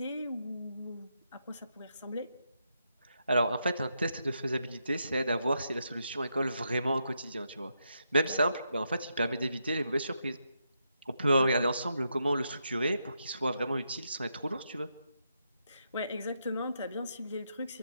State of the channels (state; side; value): inverted; both; correlation -0.82